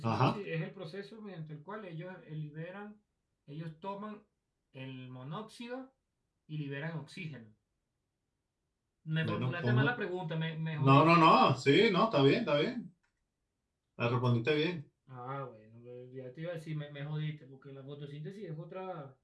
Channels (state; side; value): identical; both; correlation 1.00